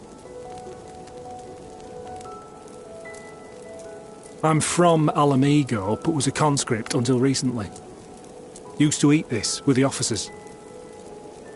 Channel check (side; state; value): both; identical; correlation 1.00